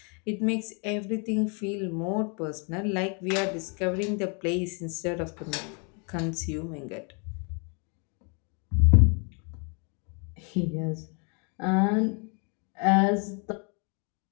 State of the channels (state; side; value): quieter; right; 36.1 dB